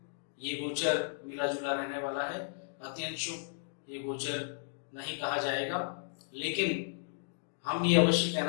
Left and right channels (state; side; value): silent; right; digital silence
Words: ये गोचर मिला जुला रहने वाला है। अत्यंत शुभ ये गोचर नहीं कहा जाएगा, लेकिन हम ये अवश्य